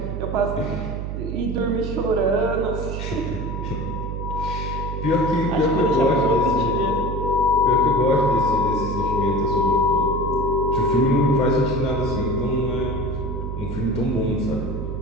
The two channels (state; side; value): noise; right; hum, 5 dB below the sound